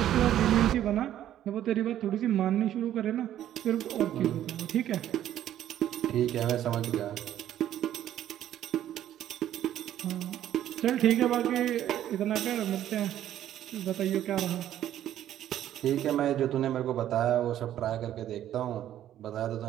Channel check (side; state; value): left; quieter; 11.7 dB